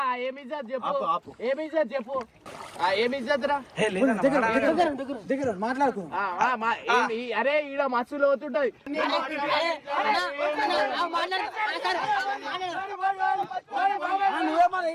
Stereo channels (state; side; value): identical; both; correlation 1.00